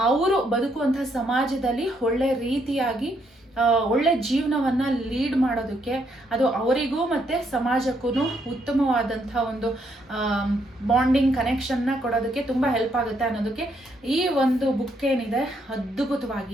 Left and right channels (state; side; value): normal; both; correlation 0.74